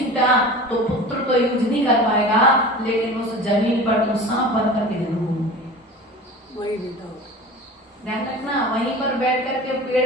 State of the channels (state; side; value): normal; both; correlation 0.37